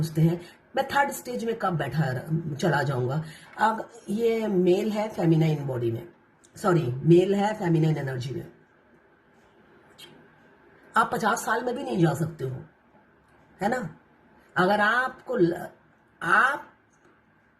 हैं मैं थर्ड स्टेज में कब चला जाऊंगा। अब ये मेल है फेमिनाइन बॉडी में, सॉरी मेल है फेमिनाइन एनर्जी में। आप 50 साल में भी नहीं जा सकते हो, है ना। अगर आप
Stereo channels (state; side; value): identical; both; correlation 1.00